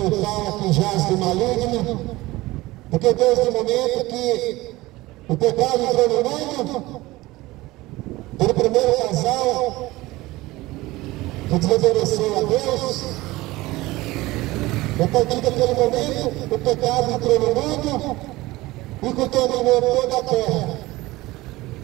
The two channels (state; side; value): quieter; left; 19.3 dB